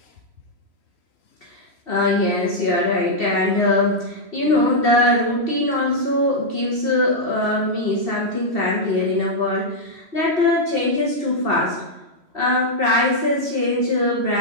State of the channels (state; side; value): late; left; 3.1 ms